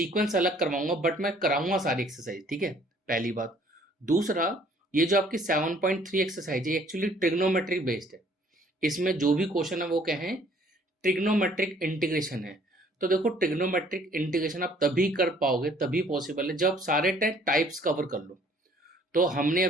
अलग करवाऊंगा बट मैं कराऊंगा सारी एक्सरसाइज, ठीक है, पहली बात। दूसरा, ये जो आपकी 7.3 एक्सरसाइज है एक्चुअली ट्रिग्नोमेट्रिक बेस्ड है। इसमें जो भी क्वेश्चन है वो क्या है? ट्रिग्नोमेट्रिक इंटीग्रेशन है। तो देखो, ट्रिग्नोमेट्रिक इंटीग्रेशन आप तभी कर पाओगे, तभी पॉसिबल है जब सारे टाइप्स कवर कर लो। तो हमने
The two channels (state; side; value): normal; both; correlation 0.59